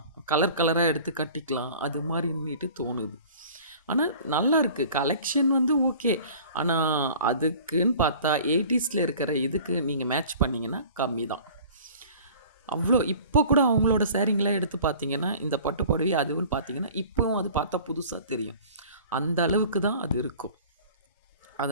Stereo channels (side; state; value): both; inverted; correlation -0.46